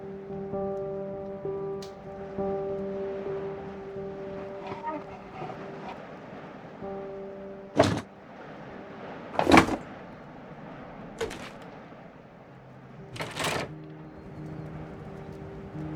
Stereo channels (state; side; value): identical; both; correlation 1.00